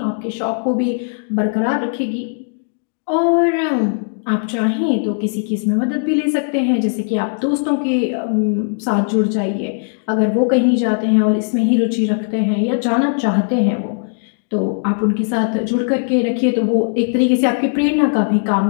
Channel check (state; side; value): silent; right; digital silence